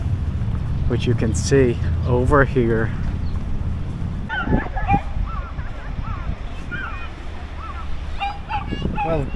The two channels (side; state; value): both; identical; correlation 1.00